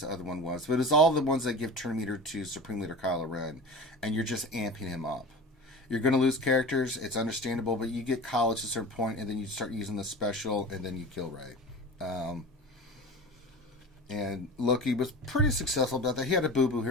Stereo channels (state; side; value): normal; both; correlation 0.34